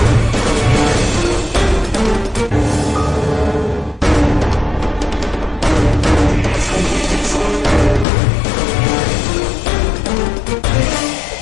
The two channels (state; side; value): drops out; right; at 8.1 s